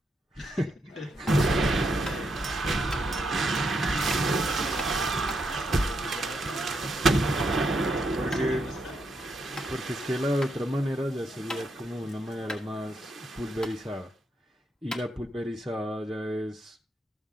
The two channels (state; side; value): normal; both; correlation 0.79